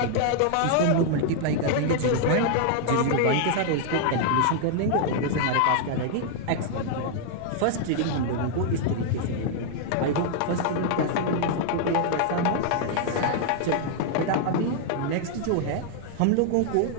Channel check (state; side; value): different; both; correlation 0.00